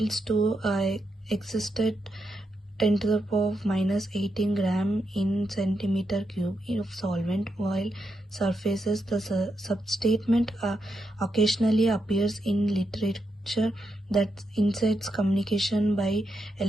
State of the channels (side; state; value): both; normal; correlation 0.83